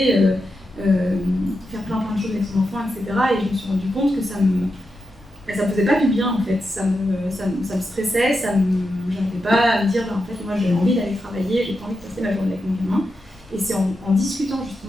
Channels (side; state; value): both; normal; correlation 0.87